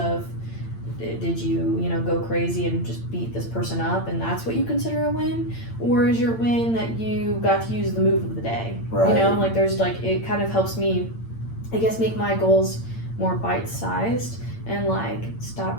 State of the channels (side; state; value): right; late; 8.8 ms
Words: did you go crazy and just beat this person up and that's what you consider a win, or is your win that you got to use the move of the day, and like there's like, it kind of helps me, I guess, make my goals more bite-sized and like